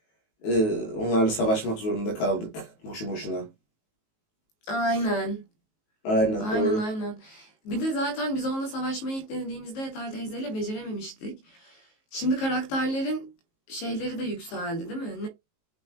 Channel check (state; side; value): late; right; 19 ms